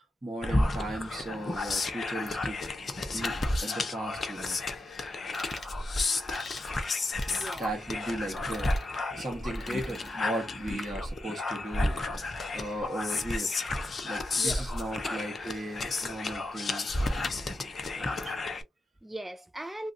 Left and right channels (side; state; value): both; normal; correlation 0.87